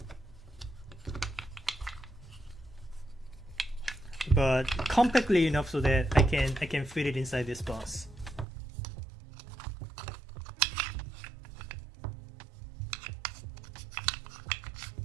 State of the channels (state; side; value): drops out; left; at 8.5 s